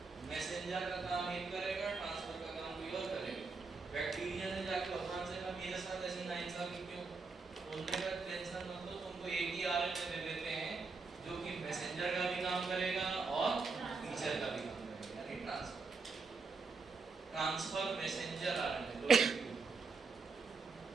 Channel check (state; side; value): quieter; left; 4.4 dB